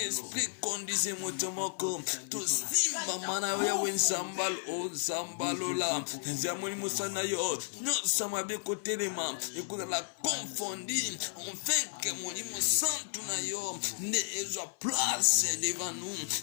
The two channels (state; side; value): silent; right; 56 dB below the other